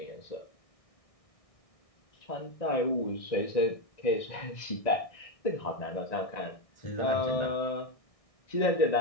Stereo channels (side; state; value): right; late; 1.6 ms